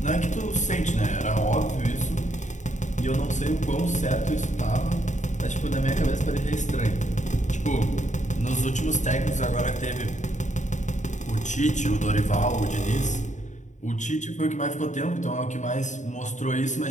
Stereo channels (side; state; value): right; late; 0.35 ms